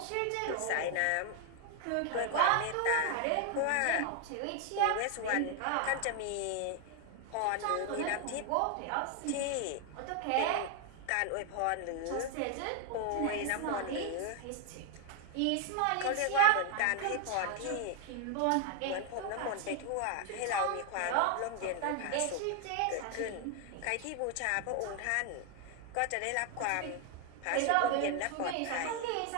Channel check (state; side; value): different; both; correlation 0.00